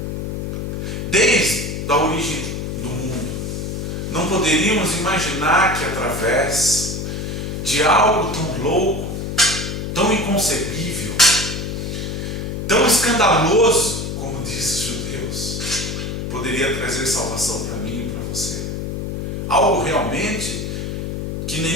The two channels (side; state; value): left; noise; hum, 4 dB below the sound